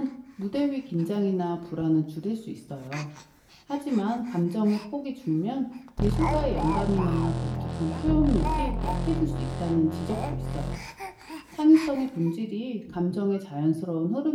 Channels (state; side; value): identical; both; correlation 1.00